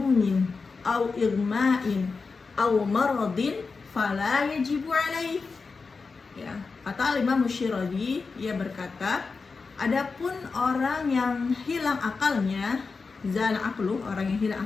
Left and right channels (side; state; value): right; quieter; 4.5 dB